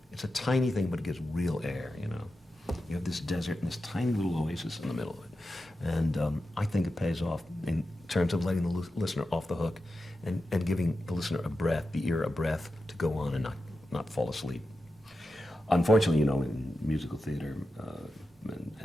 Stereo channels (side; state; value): both; normal; correlation 0.90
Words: It's a tiny thing, but it gives real air. You know, you have this desert and this tiny little oasis in the middle of it. And I think it pays off in terms of letting the listener off the hook and giving the listener a breath, the ear a breath to go on and not fall asleep. Unfortunately, you know, in musical theater, and